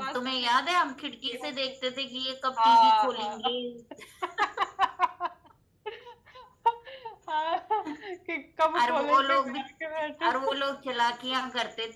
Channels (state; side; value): identical; both; correlation 1.00